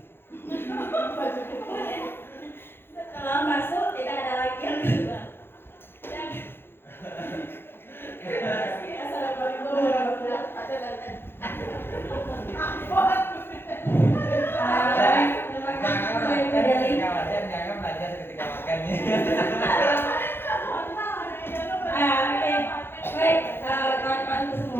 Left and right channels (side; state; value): right; late; 0.11 ms